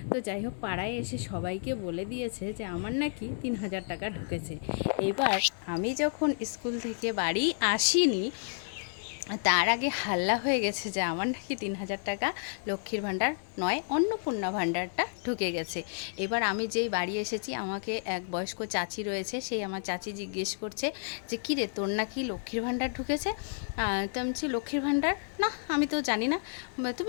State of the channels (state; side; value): silent; right; 57 dB below the other